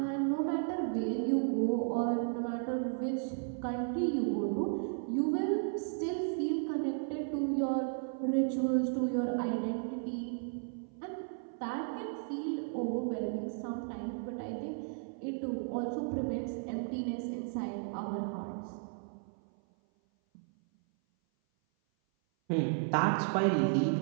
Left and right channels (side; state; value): left; silent; 55 dB below the other